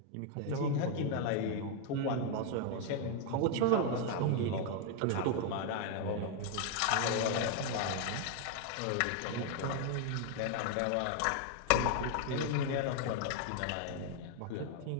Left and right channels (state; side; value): different; both; correlation 0.00